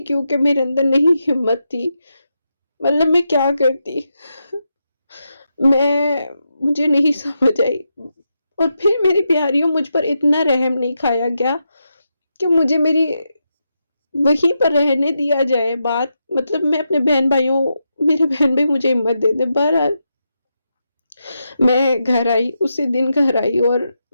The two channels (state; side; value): inverted; both; correlation -0.86